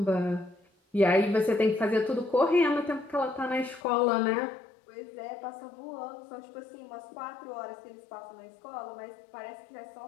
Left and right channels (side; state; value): right; drops out; at 3.8 s